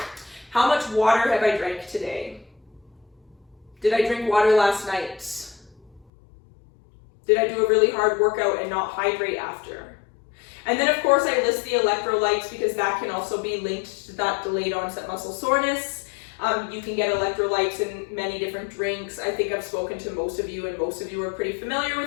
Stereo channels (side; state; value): right; drops out; at 6.1 s